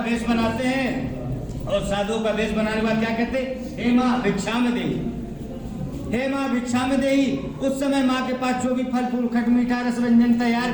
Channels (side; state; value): both; identical; correlation 1.00